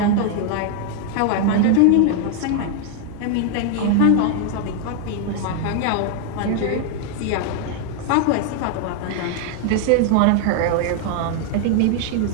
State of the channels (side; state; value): both; different; correlation 0.00